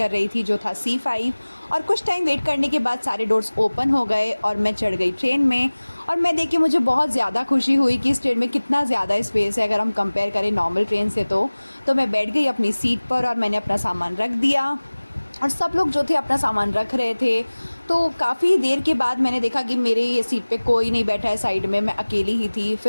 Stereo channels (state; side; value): inverted; both; correlation -1.00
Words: रही थी, जो था C5। और कुछ टाइम वेट करने के बाद सारे डोर्स ओपन हो गए और मैं चढ़ गई ट्रेन में। और मैं देख के मुझे बहुत ज़्यादा खुशी हुई कि इस ट्रेन में कितना ज़्यादा स्पेस है अगर हम कंपेयर करें नॉर्मल ट्रेन से। तो मैं बैठ गई अपनी सीट पर और मैंने अपना सामान रख दिया और सब लोग जो थे अपना सामान रख रहे थे। तो काफ़ी देर के बाद मैंने देखा कि मेरे ये सीट पे कोई नहीं बैठा है साइड में, मैं अकेली ही थी।